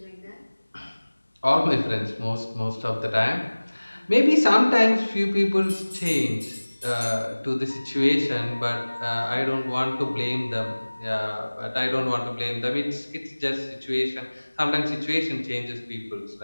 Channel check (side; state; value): both; inverted; correlation -1.00